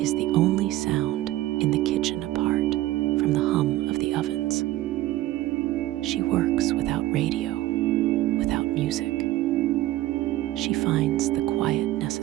is the only sound in the kitchen apart from the hum of the ovens. She works without radio, without music. She finds the quiet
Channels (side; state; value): left; quieter; 16.0 dB